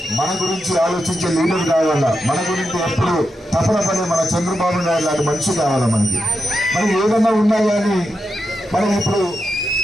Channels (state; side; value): normal; both; correlation 0.87